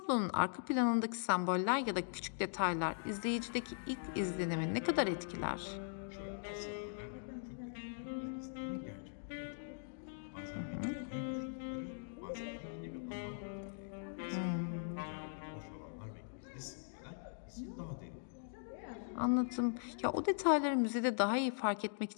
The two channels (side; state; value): right; silent; digital silence